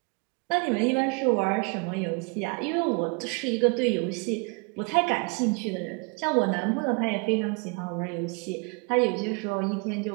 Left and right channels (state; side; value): quieter; left; 32.8 dB